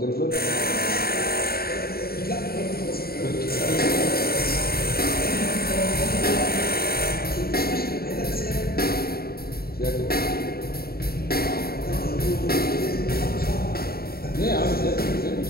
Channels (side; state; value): right; late; 0.45 ms